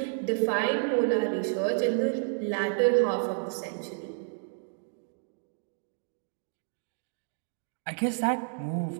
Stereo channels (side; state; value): left; silent; digital silence